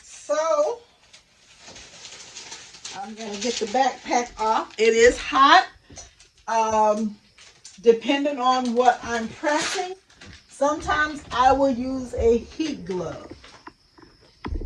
so I'm gonna get the backpack off. It is hot. Um, Depending on what I'm pressing, sometimes I will use a heat glove,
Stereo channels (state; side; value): identical; both; correlation 1.00